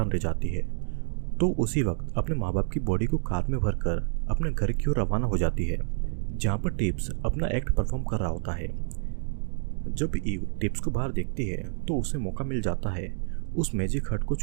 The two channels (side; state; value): left; silent; digital silence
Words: रह जाती है, तो उसी वक्त अपने माँ बाप की बॉडी को कार में भरकर अपने घर की ओर रवाना हो जाती है, जहाँ पर टिप्स अपना एक्ट परफॉर्म कर रहा होता है। जब ईव टिप्स को बाहर देखती है तो उसे मौका मिल जाता है उस मैजिक हार्ट को